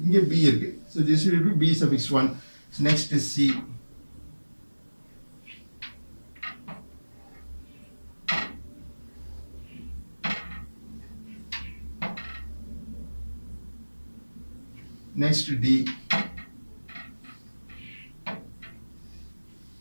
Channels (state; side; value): inverted; both; correlation -1.00